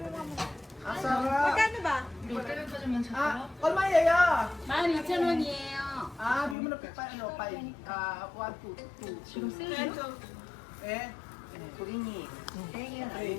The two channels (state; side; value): drops out; right; at 6.6 s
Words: mo. Ang sarap. Magkano ba? 얼마 예요? 12,000원이에요. Bigyan mo na ano, 5. 1, 2. 지금 쓰죠? Eh? 고객님, 땡이는